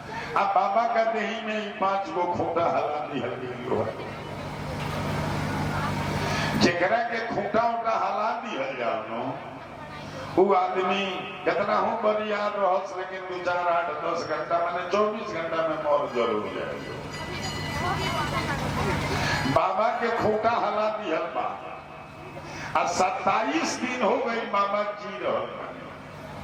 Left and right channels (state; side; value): identical; both; correlation 1.00